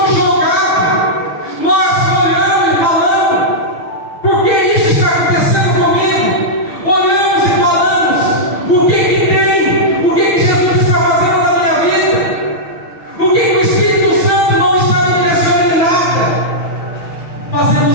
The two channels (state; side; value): late; right; 6.3 ms